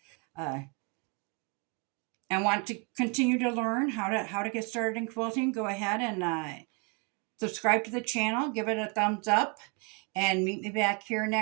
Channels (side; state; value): left; quieter; 33.8 dB